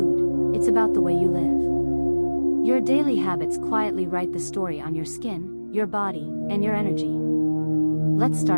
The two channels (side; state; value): both; inverted; correlation -1.00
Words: it's about the way you live. Your daily habits quietly write the story on your skin, your body, and your energy. Let's